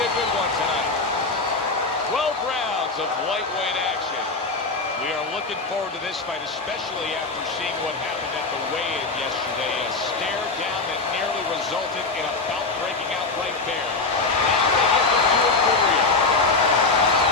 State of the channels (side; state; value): right; quieter; 3.8 dB